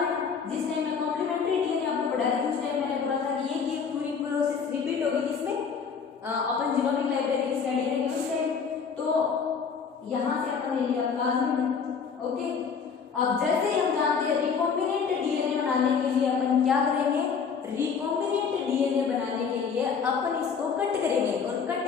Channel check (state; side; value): quieter; right; 6.1 dB